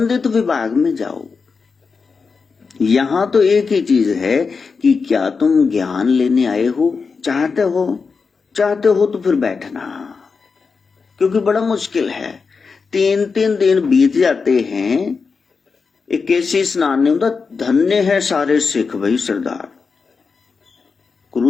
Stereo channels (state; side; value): quieter; right; 5.0 dB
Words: विभाग में जाओ। यहां तो एक ही चीज है कि क्या तुम ज्ञान लेने आए हो, चाहते हो तो फिर बैठना, क्योंकि बड़ा मुश्किल है। 3 दिन बीत जाते हैं, एक कैसी स्नान नहीं होता। धन्य है सारे सिख भाई सरदार,